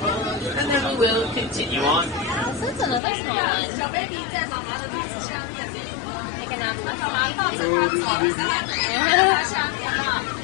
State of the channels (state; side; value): drops out; right; at 3.0 s